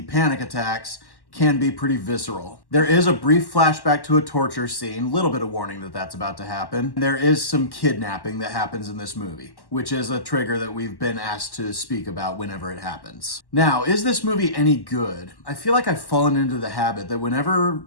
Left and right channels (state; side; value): late; right; 1.1 ms